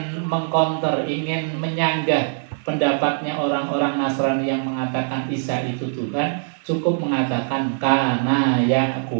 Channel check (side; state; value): left; silent; digital silence